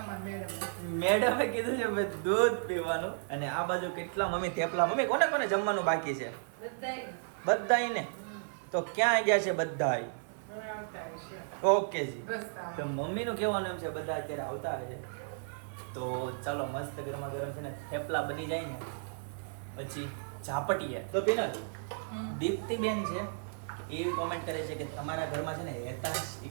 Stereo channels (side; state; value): left; silent; digital silence